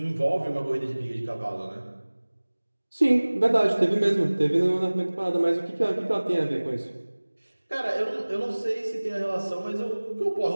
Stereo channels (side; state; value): both; inverted; correlation -1.00